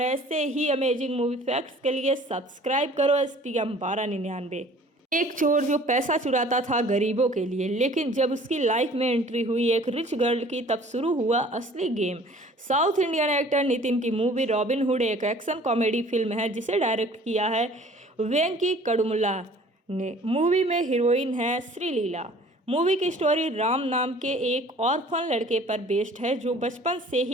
ऐसे ही अमेजिंग मूवी फैक्ट्स के लिए सब्सक्राइब करो STM 1299। एक चोर जो पैसा चुराता था गरीबों के लिए, लेकिन जब उसकी लाइफ में एंट्री हुई एक रिच गर्ल की तब शुरू हुआ असली game. South Indian actor Nitin की मूवी रॉबिनहुड एक एक्शन कॉमेडी फिल्म है जिसे डायरेक्ट किया है वेंकी कड़मुला ने। मूवी में हीरोइन है श्रीलीला। मूवी की स्टोरी राम नाम के एक ऑर्फन लड़के पर बेस्ड है जो बचपन से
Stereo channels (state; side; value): normal; both; correlation 0.50